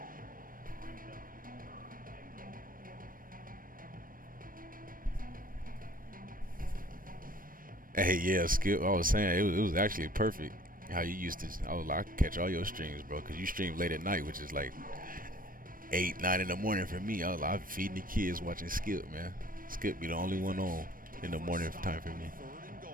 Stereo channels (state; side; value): late; left; 0.41 ms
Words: Hey, yeah, Skip, I was saying, it was actually perfect how you used to. I was like, I could catch all your streams, bro, because you stream late at night, which is like 8, 9 in the morning for me. I was like, I'm feeding the kids watching Skip, man. Skip be the only one on. in the morning time for me. Third and